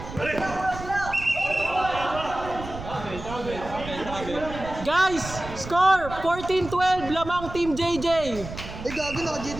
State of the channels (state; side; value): noise; right; rumble, 11 dB below the sound